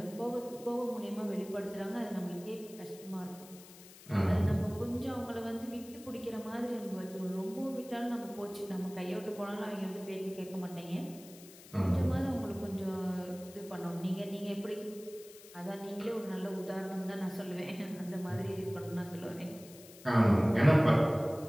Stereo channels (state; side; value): noise; left; hiss, 19 dB below the sound